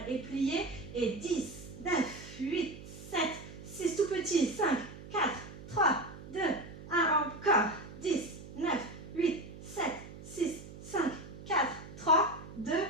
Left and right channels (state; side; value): noise; right; hum, 14 dB below the sound